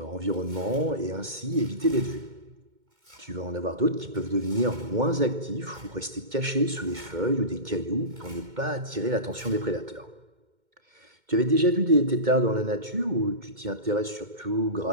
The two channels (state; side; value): late; left; 2.1 ms